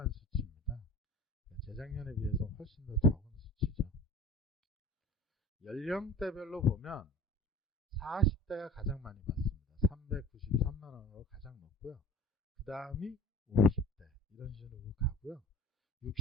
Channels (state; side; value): normal; both; correlation 0.41